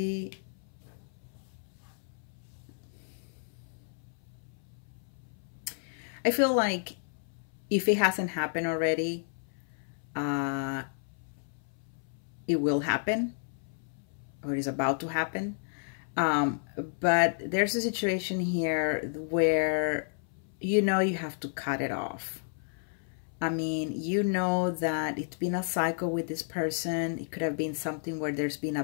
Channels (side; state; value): right; silent; 57 dB below the other